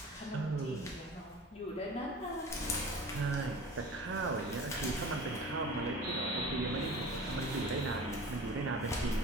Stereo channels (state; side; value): normal; both; correlation 0.39